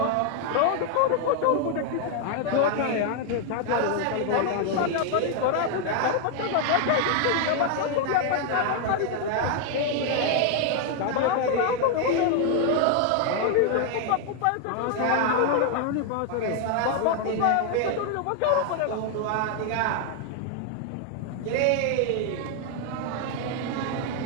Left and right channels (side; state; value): both; different; correlation 0.00